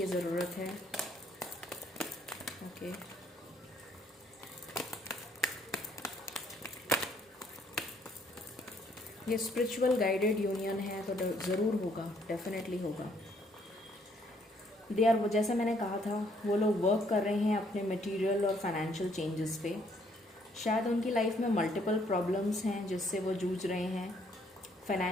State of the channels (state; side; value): normal; both; correlation 0.67